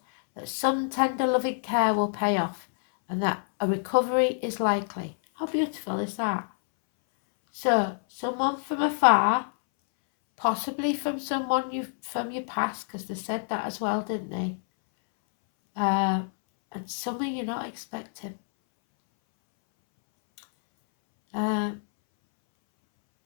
that some tender loving care will pay off and that a recovery is likely. How beautiful is that? So, someone from afar, possibly from someone from your past, because they said that as well, didn't they? And something you're not expecting. And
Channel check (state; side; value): silent; right; 60 dB below the other